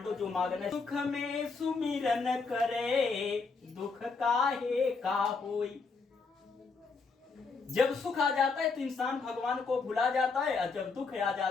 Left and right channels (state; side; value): quieter; right; 4.5 dB